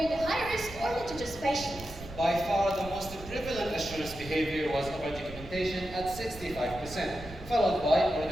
high-risk or litigious patients. By far, the most prevalent assurance behavior was over-documentation at 65%, followed by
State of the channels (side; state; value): right; noise; rumble, 14 dB below the sound